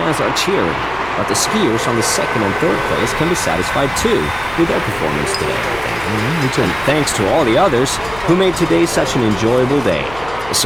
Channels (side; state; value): left; noise; hum, 18 dB below the sound